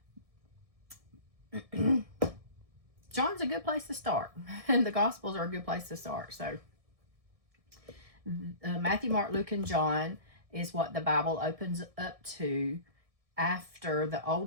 John's a good place to start. And the Gospels are a good place to start. So Matthew, Mark, Luke, and John is what the Bible opens up to. After the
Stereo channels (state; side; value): late; left; 1.6 ms